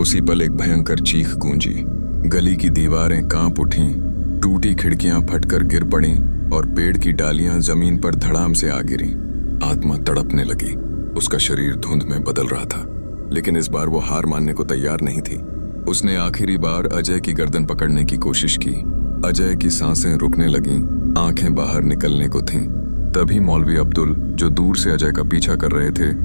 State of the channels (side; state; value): both; inverted; correlation -1.00